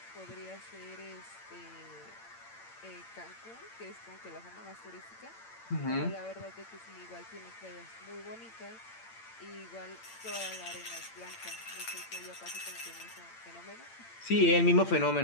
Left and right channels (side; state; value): right; late; 8.8 ms